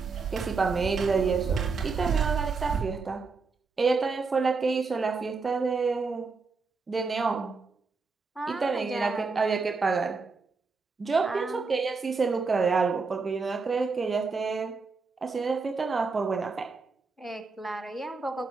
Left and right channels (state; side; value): quieter; left; 4.5 dB